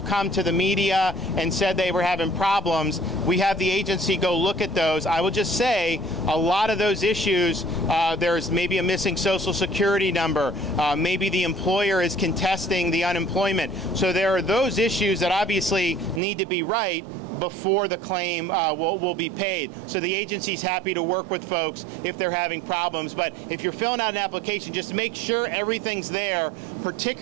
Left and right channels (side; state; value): left; drops out; at 16.2 s